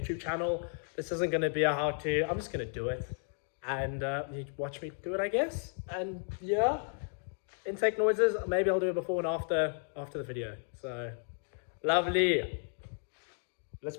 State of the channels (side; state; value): right; silent; 55 dB below the other